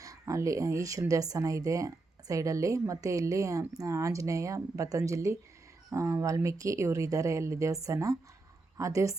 ಅಲ್ಲಿ ಈಶ್ವರನ ದೇವಸ್ಥಾನ ಇದೆ ಸೈಡಲ್ಲಿ. ಮತ್ತು ಇಲ್ಲಿ ಆಂಜನೇಯ, ಪತಂಜಲಿ, ವಾಲ್ಮೀಕಿ ಇವರು ಇದ್ದಾರೆ ಅಲ್ಲಿ ದೇವಸ್ಥಾನ. ಆ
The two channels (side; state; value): left; quieter; 3.3 dB